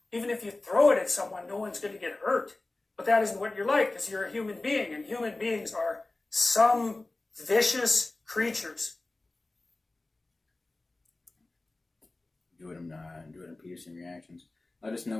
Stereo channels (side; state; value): right; quieter; 3.0 dB